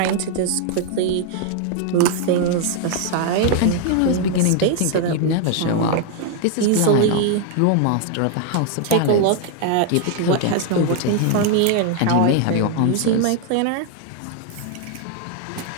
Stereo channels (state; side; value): different; both; correlation 0.00